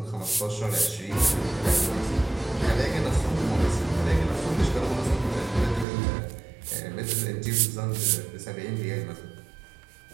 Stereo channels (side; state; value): left; drops out; at 5.9 s